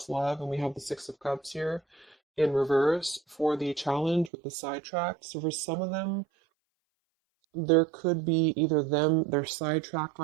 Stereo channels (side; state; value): left; drops out; at 4.3 s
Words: love and we have the Six of Cups here in reverse for the challenge with the sidetracked. So for some of them, there could be either they're sidetracked